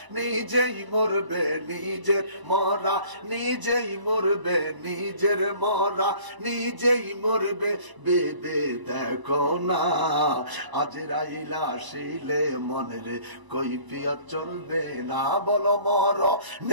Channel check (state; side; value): late; left; 1.0 ms